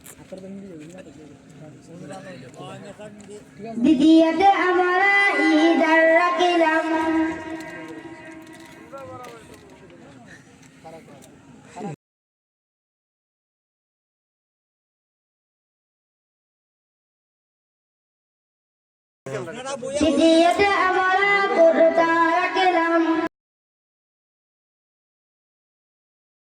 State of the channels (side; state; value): both; identical; correlation 1.00